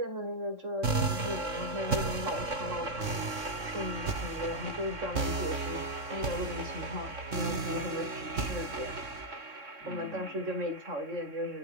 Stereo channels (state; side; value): late; left; 3.6 ms